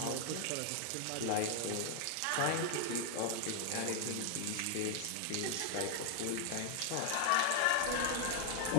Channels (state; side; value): different; both; correlation 0.00